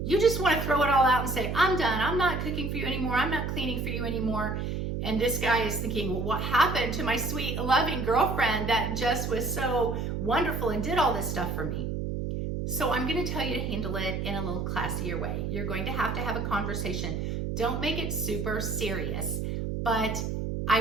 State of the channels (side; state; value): right; noise; hum, 2 dB below the sound